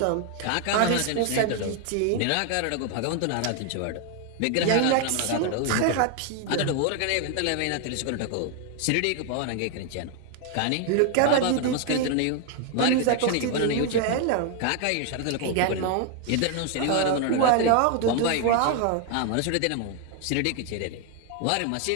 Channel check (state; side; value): different; both; correlation 0.01